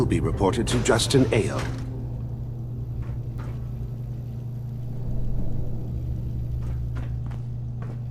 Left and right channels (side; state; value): both; identical; correlation 1.00